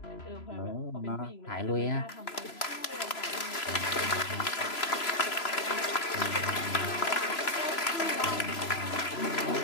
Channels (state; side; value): late; right; 3.0 ms